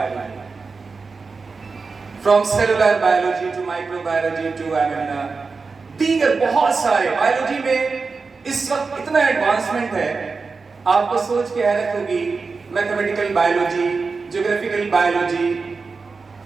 from cellular biology to microbiology to दीगर बहुत सारे। बायोलॉजी में इस वक्त इतना एडवांसमेंट है, आपको सोच के हैरत होगी। Mathematical biology, geographical biology,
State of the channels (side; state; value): left; quieter; 4.5 dB